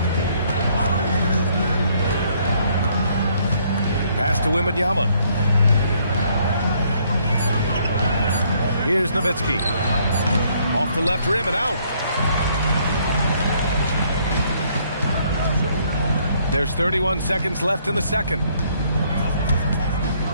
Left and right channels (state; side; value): inverted; both; correlation -0.66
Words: Pass to Wembanyama. Here's Nowitzki. Off the left rim and out. There's 31 seconds left in the second.